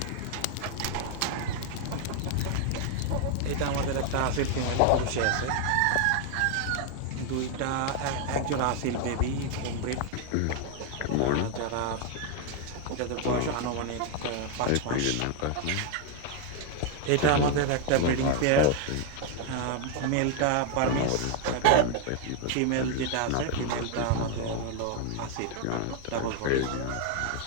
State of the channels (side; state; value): both; different; correlation 0.00